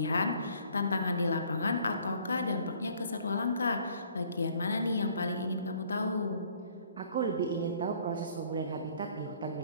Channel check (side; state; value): both; inverted; correlation -0.58